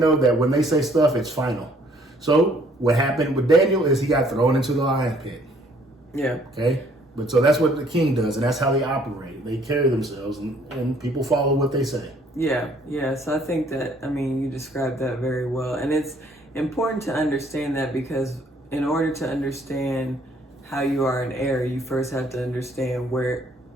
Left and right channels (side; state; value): both; normal; correlation 0.62